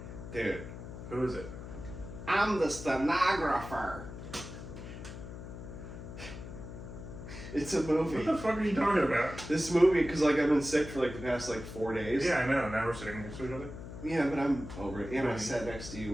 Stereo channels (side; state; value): left; noise; hum, 11 dB below the sound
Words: Dude. Who is it? I'm the stenographer. It's a movie. What the fuck are you talking about? This movie, because like I've been sick for like the past like 4 days. Yeah, I know. Now we're sitting next to each other. Yeah, but I'm over it. And I Right. sat next to you